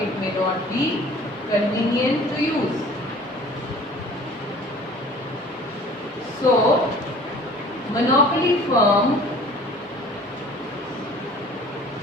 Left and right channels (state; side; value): normal; both; correlation 0.48